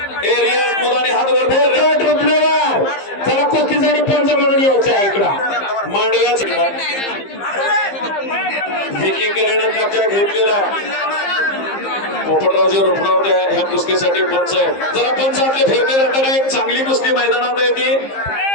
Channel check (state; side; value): late; right; 15 ms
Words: ए रियाज मुलांनी हात वर कर। पोपट रुपनवर चला कुस्तीसाठी पंच म्हणून यायचं आहे इकडं मांडव्याच विकी करेनं कब्जा घेतलेला पोपटरावजी रुपणावर ह्या कुस्तीसाठी पंच आहे। जरा पंच आपले फिरते जाताना एक चांगली कुस्ती मैदानात आहे ती।